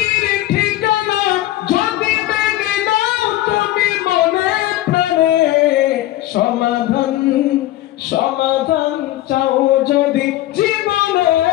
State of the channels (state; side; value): quieter; right; 15.3 dB